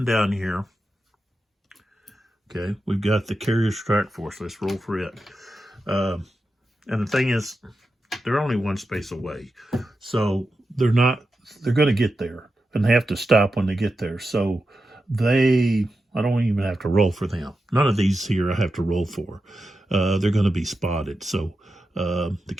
down here, okay, we've got the carrier strike force. Let's roll for it. And the thing is, they're only 1 space away. So they're going to get there, and they have to stop when they get there. So I don't even have to roll for them. None of these here I have to roll for. They're going to be spotted. So the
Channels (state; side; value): normal; both; correlation 0.90